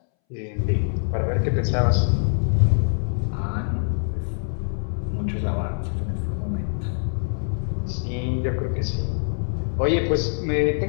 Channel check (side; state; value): right; silent; 63 dB below the other